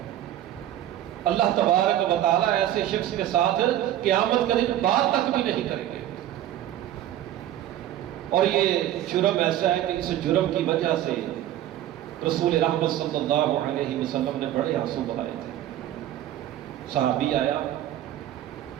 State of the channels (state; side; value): quieter; left; 12.5 dB